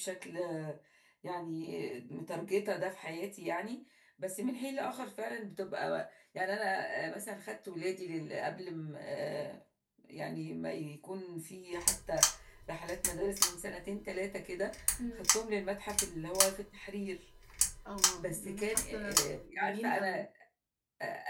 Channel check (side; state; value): both; identical; correlation 1.00